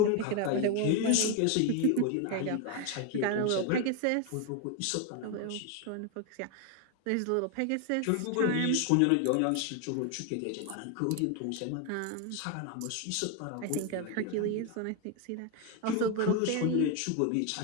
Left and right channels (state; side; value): different; both; correlation 0.01